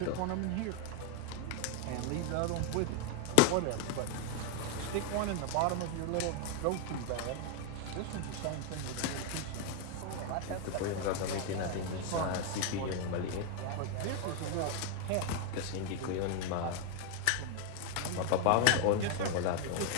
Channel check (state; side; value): different; both; correlation 0.00